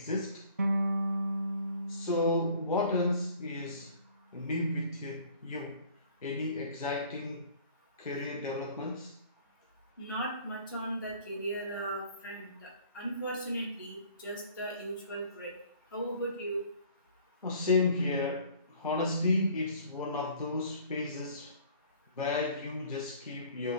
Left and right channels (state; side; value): inverted; both; correlation -0.53